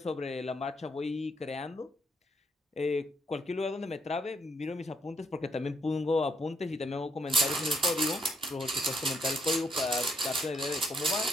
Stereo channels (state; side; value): normal; both; correlation 0.71